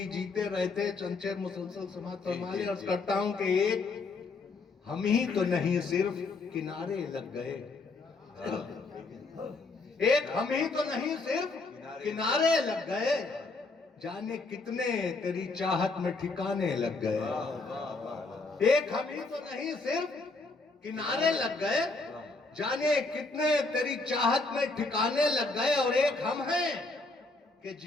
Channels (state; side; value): quieter; right; 3.6 dB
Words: جیتے رہتے چنچیر مسلسل سماعت فرما لیں عرض کرتا ہوں کہ ایک ہم ہی تو نہیں صرف کنارے لگ گئے ایک ہم ہی تو نہیں صرف کنارے لگ گئے جانے کتنے تیری چاہت میں ٹھکانے لگ گئے ایک ہم ہی تو نہیں صرف کنارے لگ گئے جانے کتنے تیری چاہت میں ٹھکانے لگ گئے اور ایک ہم ہیں کہ